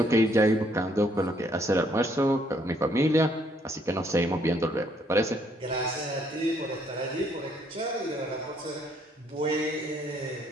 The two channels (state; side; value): normal; both; correlation 0.68